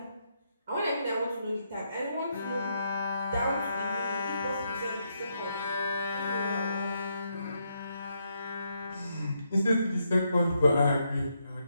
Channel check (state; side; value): inverted; both; correlation -0.78